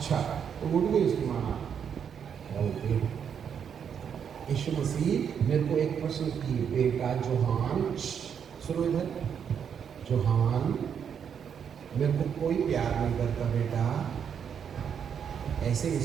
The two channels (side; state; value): left; quieter; 7.7 dB